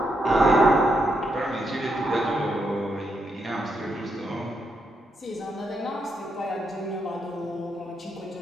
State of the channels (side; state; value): both; normal; correlation 0.80